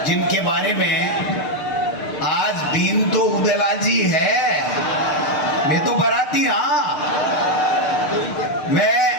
जिनके बारे में आज बीन तो उदयलाल जी है, मैं तो बराती। हाँ, मैं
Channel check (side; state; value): right; late; 6.6 ms